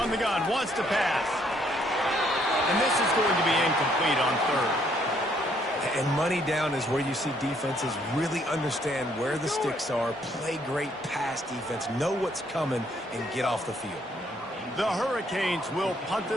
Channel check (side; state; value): both; normal; correlation 0.68